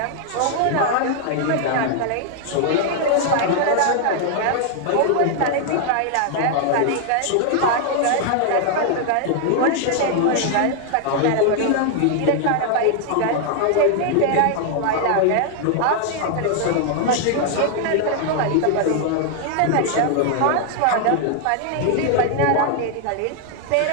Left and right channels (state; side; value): different; both; correlation 0.00